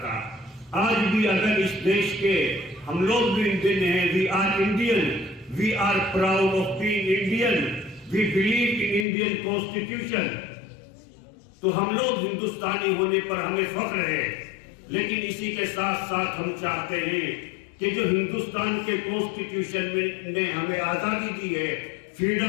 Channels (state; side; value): drops out; right; at 9.1 s